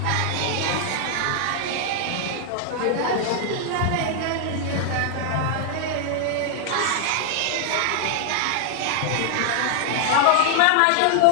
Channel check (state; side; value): different; both; correlation -0.01